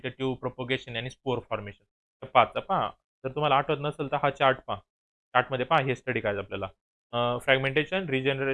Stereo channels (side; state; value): both; identical; correlation 1.00